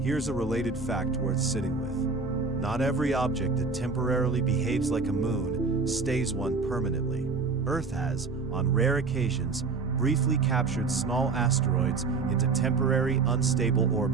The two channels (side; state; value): left; quieter; 4.4 dB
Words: Here's a related fact worth sitting with. Not every object that temporarily behaves like a moon stays one permanently. Earth has, on rare occasions, briefly captured small asteroids into temporary unstable